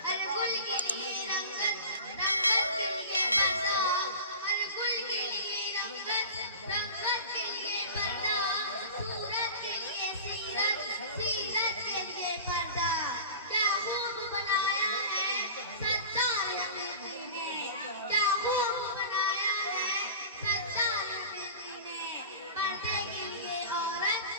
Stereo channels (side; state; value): both; inverted; correlation -0.35